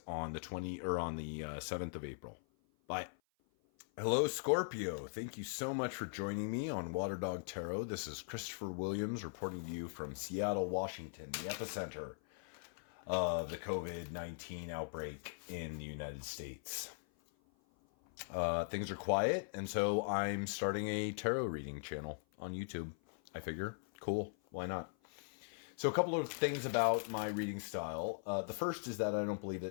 on the 7th of April. Bye. Hello, Scorpio. Thank you so much for joining me on Water Dog Tarot. This is Christopher Williams reporting to you from Seattle, Washington, the epicenter of the COVID-19 outbreak in the United States. Things are quiet, and so I'm starting a tarot reading channel on YouTube. I figure, cool, why not? So a couple of things about my reading style. The first is that I don't believe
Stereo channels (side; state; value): right; silent; 51 dB below the other